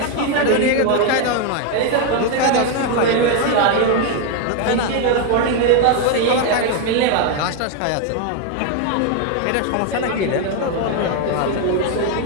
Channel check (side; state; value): both; different; correlation 0.01